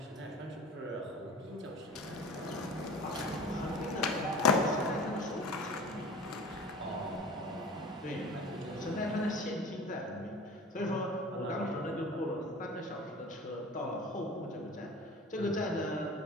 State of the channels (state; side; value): normal; both; correlation 0.38